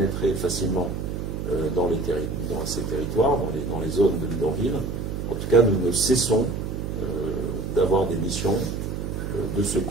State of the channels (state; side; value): noise; right; hum, 4 dB below the sound